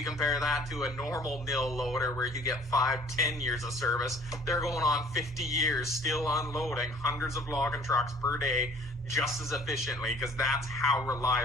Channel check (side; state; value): both; normal; correlation 0.54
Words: compare that to a normal mill loader where you get 5-10 years of service, they're going on 50 years still unloading hundreds of logging trucks per day just as efficiently, because that's how